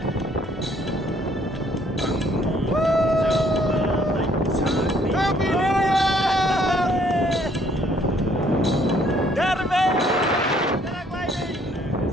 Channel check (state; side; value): normal; both; correlation 0.64